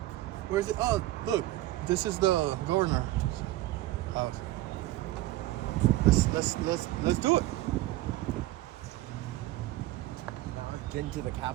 Where's it? Oh, look, this is the governor's house. Let's do it. Now we've been to the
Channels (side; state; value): left; quieter; 16.5 dB